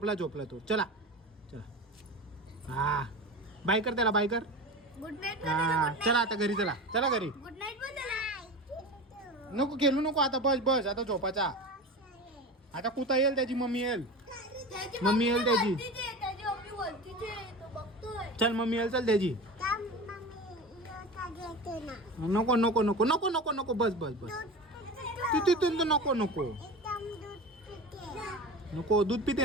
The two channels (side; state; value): both; normal; correlation 0.30